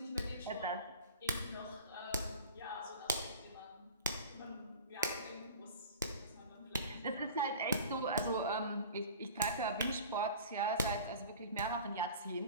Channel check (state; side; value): inverted; both; correlation -0.41